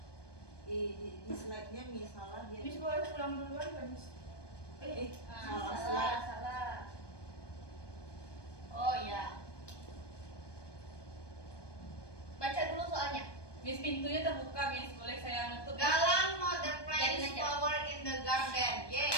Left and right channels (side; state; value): right; late; 1.2 ms